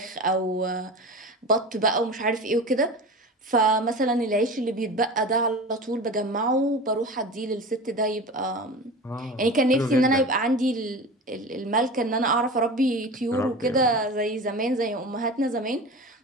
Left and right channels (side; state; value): both; normal; correlation 0.32